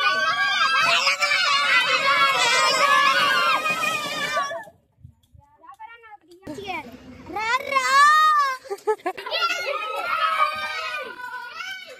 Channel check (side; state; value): both; identical; correlation 1.00